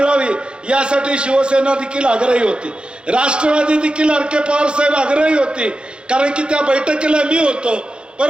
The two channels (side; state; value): left; late; 0.054 ms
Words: यासाठी शिवसेना देखील आग्रही होती, राष्ट्रवादी देखील आर.के. पवार साहेब आग्रही होती, कारण की त्या बैठकीला मी होतो.